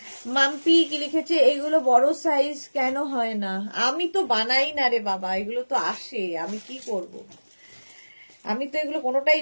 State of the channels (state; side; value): inverted; both; correlation -1.00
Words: মাম্পি কি লিখেছে, এগুলো বড় সাইজ কেন হয় না? আমি তো বানাই না রে বাবা, এগুলো তো আসে, আমি কি করব? আমি তো এগুলো কোনোটাই,